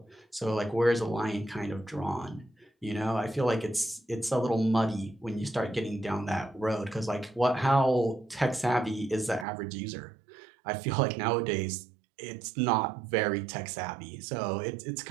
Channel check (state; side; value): drops out; left; at 9.5 s